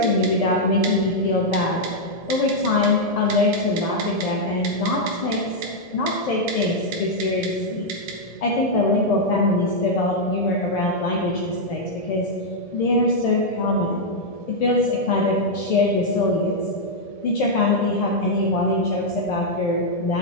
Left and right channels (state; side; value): late; right; 1.7 ms